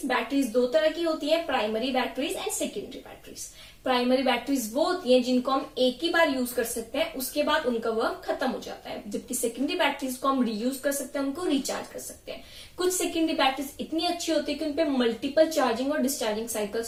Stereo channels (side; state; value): both; identical; correlation 1.00